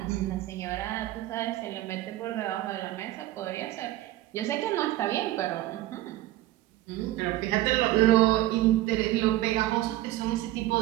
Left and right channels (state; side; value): quieter; left; 15.8 dB